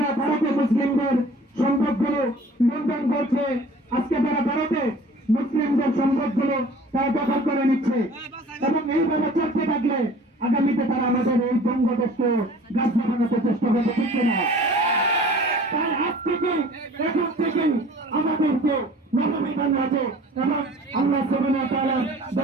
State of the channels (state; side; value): normal; both; correlation 0.47